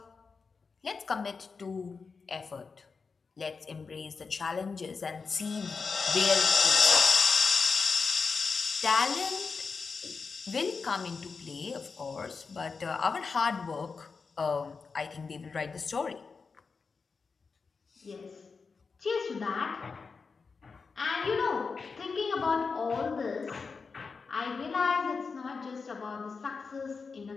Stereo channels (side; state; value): right; quieter; 4.9 dB